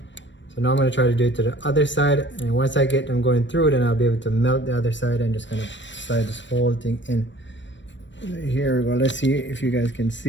So now I'm going to try to do it to the other side, and once I get them going through, then I'll be able to melt the other side and just kind of slide this whole thing in. Here we go. Let's see if you guys can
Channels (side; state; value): right; late; 0.53 ms